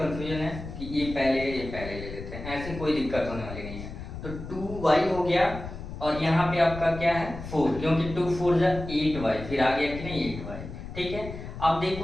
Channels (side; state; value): left; noise; rumble, 10 dB below the sound